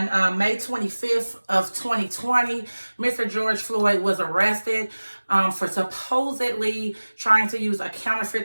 May 25th of 2020, Mr. George Floyd was arrested for supposedly trying to use a counterfeit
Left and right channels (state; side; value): inverted; both; correlation -1.00